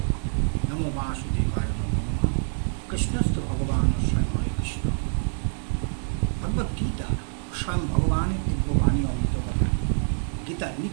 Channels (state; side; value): silent; left; digital silence